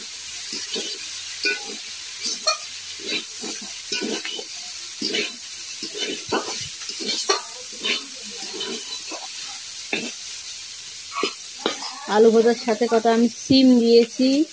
আলু ভাজার সাথে কটা আমি সিম দিয়েছি,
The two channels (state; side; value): identical; both; correlation 1.00